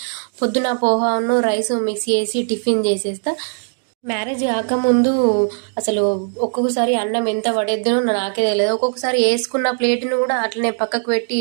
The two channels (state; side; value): silent; left; 65 dB below the other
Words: పొద్దున పోహాను రైస్ మిక్స్ చేసి టిఫిన్ చేసేస్తా. మ్యారేజ్ కాకముందు అసలు ఒక్కొక్కసారి అన్నం ఎంత పడేద్దునో నాకే తెలియదు. ఒక్కొక్కసారి వేసుకున్న ప్లేట్ను కూడా అట్లనే పక్కకు పెట్టి